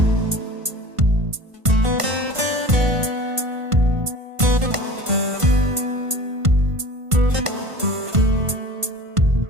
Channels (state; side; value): late; left; 1.5 ms